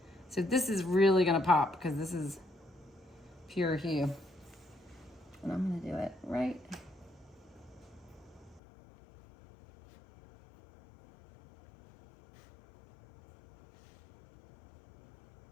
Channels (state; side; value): drops out; right; at 8.6 s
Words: So this is really gonna pop because this is pure hue. And I'm gonna do it right